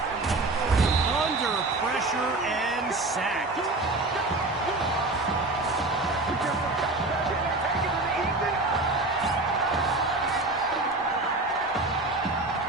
Under pressure and sacked.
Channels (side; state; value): left; quieter; 3.0 dB